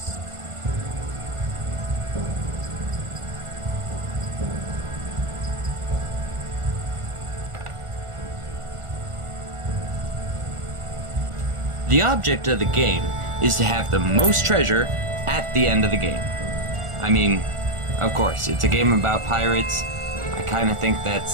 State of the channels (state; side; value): late; left; 1.4 ms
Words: The object of the game is to have the most treasure at the end of the game. I mean, of course, it's a game about pirates. I kind of think